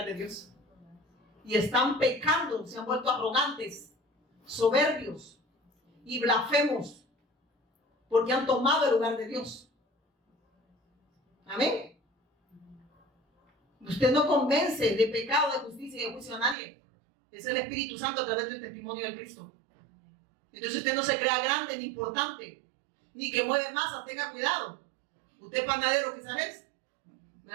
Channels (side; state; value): left; drops out; at 16.6 s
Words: de Dios. Y están pecando, se han vuelto arrogantes, soberbios y blasfemos, porque han tomado el lugar de Dios. Amén. Usted no convence de pecado, de justicia y de juicio a nadie. Es el Espíritu Santo a través del testimonio de Cristo. Entonces usted no se crea grande ni importante, ni que mueve masa, tenga cuidado. Usted es panadero quizás es,